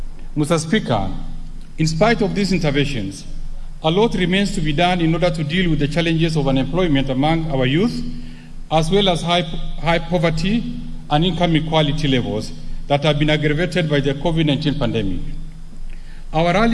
Mr. Speaker, in spite of these interventions, a lot remains to be done in order to deal with the challenges of unemployment among our youth, as well as high poverty and income equality levels that have been aggravated by the COVID-19 pandemic. Our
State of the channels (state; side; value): identical; both; correlation 1.00